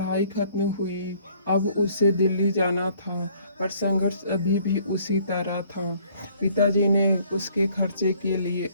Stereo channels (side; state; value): both; inverted; correlation -0.60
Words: खत्म हुई, अब उसे दिल्ली जाना था, पर संघर्ष अभी भी उसी तरह था। पिताजी ने उसके खर्चे के लिए